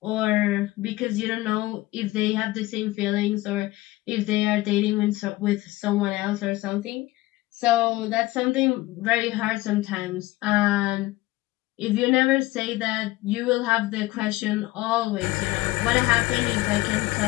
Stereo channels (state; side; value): quieter; right; 18.5 dB